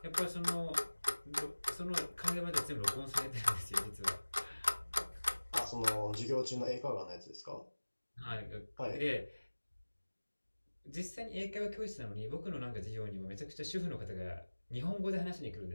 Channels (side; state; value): both; inverted; correlation -1.00